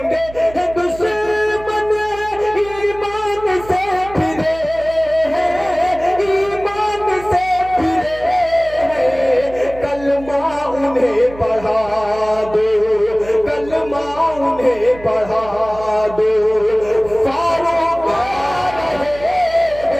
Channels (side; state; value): right; noise; hum, 17 dB below the sound